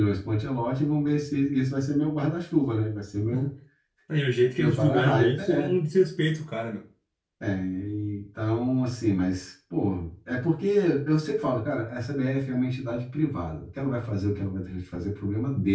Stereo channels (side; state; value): both; identical; correlation 1.00